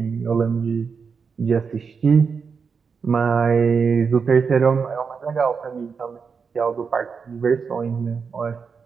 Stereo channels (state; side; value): quieter; left; 5.7 dB